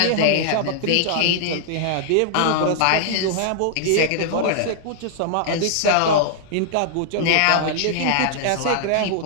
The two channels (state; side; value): different; both; correlation -0.01